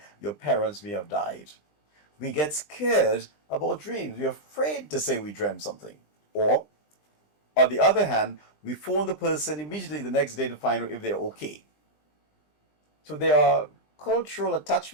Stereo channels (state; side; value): late; right; 20 ms